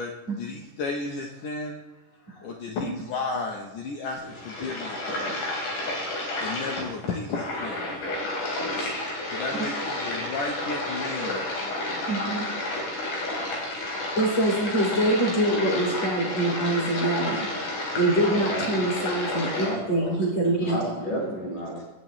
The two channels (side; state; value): right; late; 10 ms